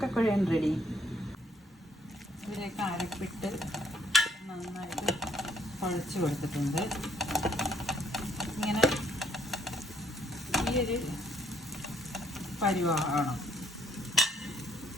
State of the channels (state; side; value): normal; both; correlation 0.67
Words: റെഡി. ഇതിലേക്ക് അരപ്പിട്ട് നന്നായിട്ട് കുഴച്ച് കൊടുത്തിട്ടുണ്ട്. ഇങ്ങനെ ഈ ഒരു പരുവാകണം.